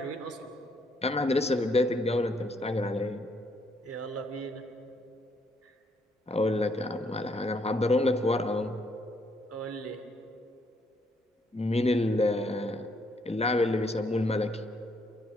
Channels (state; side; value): normal; both; correlation 0.71